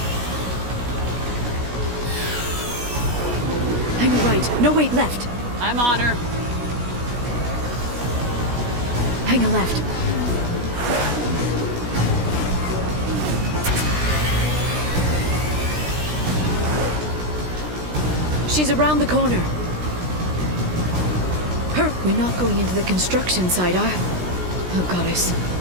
Hang right. No, wait, left. I'm on her. Hang a left. She's around the corner. We're not going into the construction site, Oh, goddess.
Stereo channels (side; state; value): left; late; 16 ms